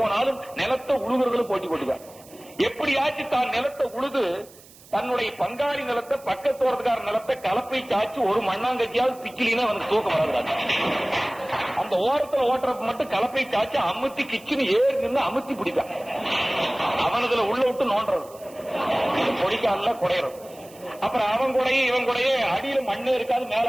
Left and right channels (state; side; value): noise; right; hiss, 23 dB below the sound